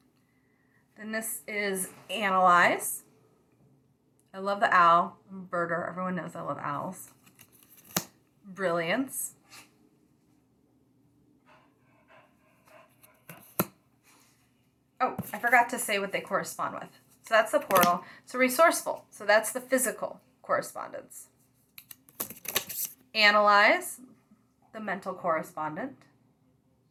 Then this is analyze. I love the owl. I'm a birder. Everyone knows I love owls. Brilliance. Oh, I forgot to say what they correspond with. So that's the portal. So resourceful. So that's the physical correspondence. Analyze. The mental correspondent.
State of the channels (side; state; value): both; identical; correlation 1.00